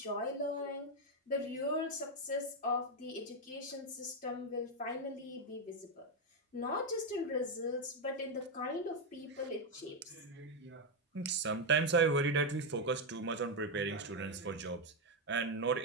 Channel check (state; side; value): normal; both; correlation 0.05